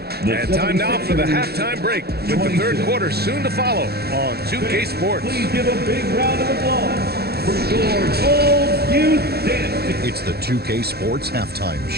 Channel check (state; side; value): late; left; 0.46 ms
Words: time now for the halftime break with the third quarter soon to follow on 2K Sports. Please give a big round of applause for your Gold Youth Dance. It's the 2K Sports Halftime